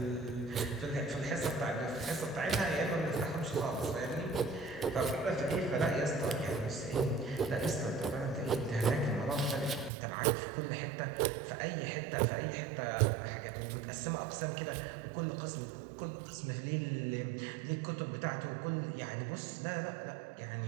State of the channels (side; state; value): left; drops out; at 9.9 s